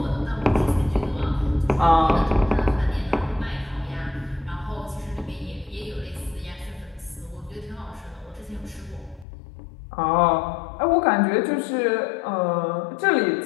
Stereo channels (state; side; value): drops out; right; at 9.2 s